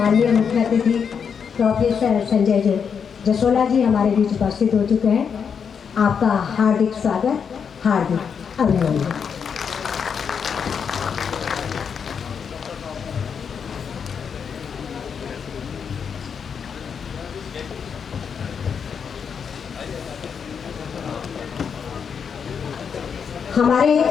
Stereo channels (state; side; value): quieter; right; 6.7 dB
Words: माननीय मुख्य अतिथि प्रोफेसर संजय जसोला जी हमारे बीच उपस्थित हो चुके हैं। आपका हार्दिक स्वागत, हार्दिक अभिनंदन। हमारे